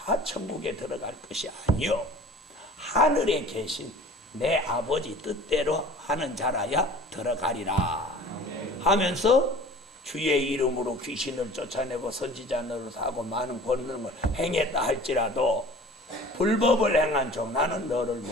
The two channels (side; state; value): both; normal; correlation 0.44